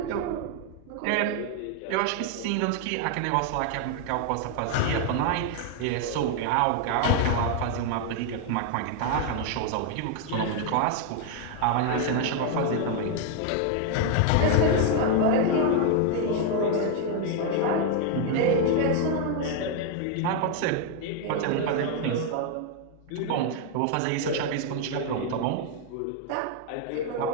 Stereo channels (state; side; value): different; both; correlation 0.00